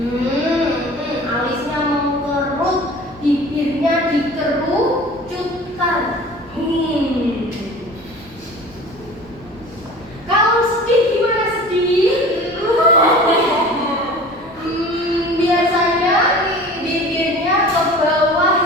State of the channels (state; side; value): noise; left; rumble, 27 dB below the sound